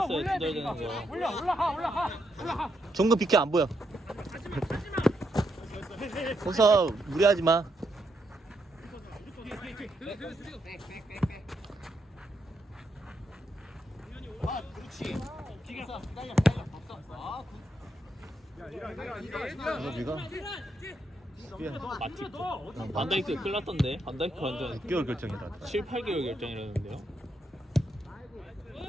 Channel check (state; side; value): normal; both; correlation 0.80